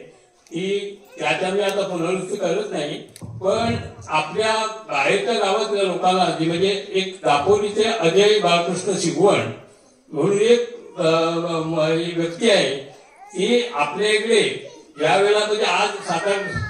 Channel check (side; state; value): both; identical; correlation 1.00